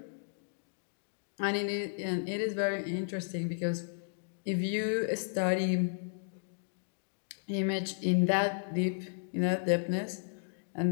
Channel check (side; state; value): right; silent; digital silence